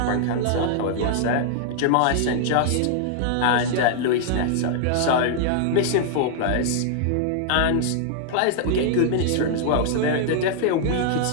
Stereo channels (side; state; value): both; different; correlation -0.01